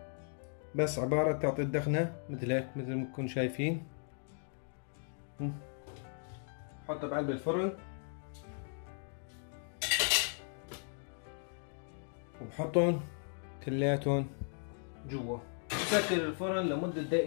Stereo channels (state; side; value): silent; right; 53 dB below the other